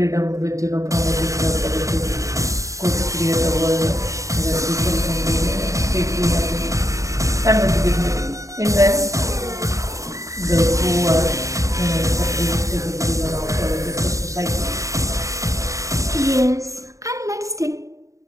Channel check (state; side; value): late; left; 0.16 ms